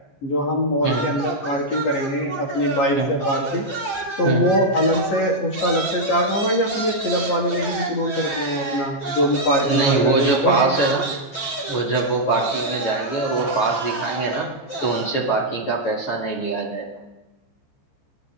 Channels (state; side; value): late; right; 15 ms